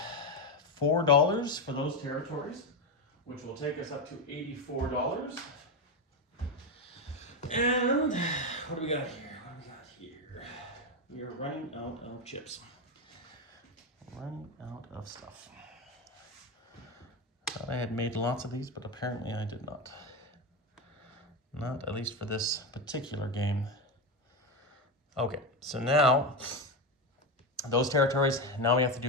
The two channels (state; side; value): normal; both; correlation 0.13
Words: $4 for those territories, which will take us up to $84. And what do we got here? We are running out of chips. Running out of stuff. Thought I had made lots of these, but apparently I did not. Not at least for this particular game. Okay, so now those territories, now we have to